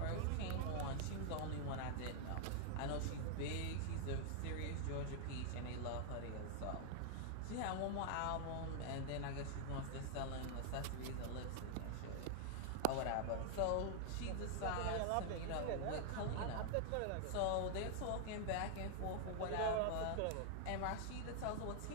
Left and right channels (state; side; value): different; both; correlation 0.00